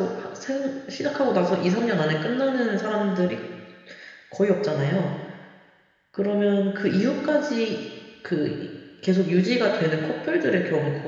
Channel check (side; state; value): both; identical; correlation 1.00